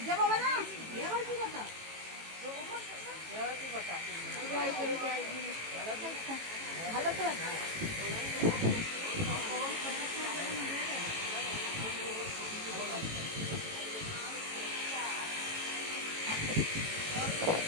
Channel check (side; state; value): left; late; 18 ms